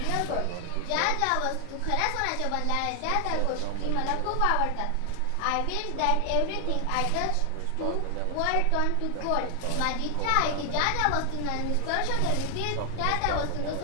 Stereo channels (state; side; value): different; both; correlation 0.00